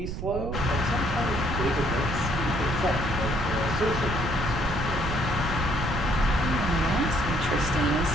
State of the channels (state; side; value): noise; right; rumble, 6 dB below the sound